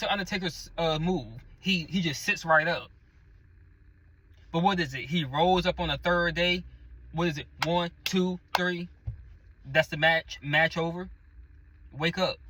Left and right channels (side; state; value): both; identical; correlation 1.00